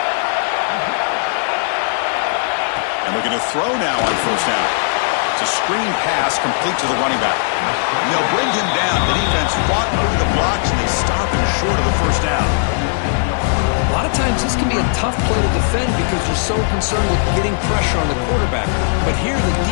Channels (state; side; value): silent; right; digital silence